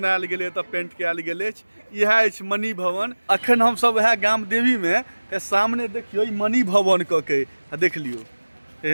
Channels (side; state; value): both; inverted; correlation -1.00